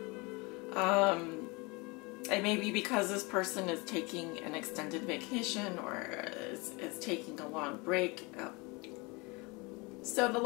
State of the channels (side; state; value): right; quieter; 27.0 dB